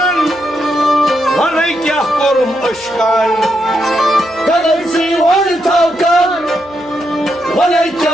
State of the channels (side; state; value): right; noise; hum, 25 dB below the sound